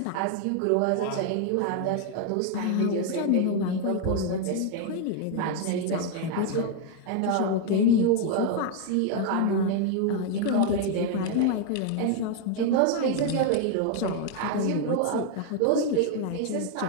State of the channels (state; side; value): different; both; correlation 0.01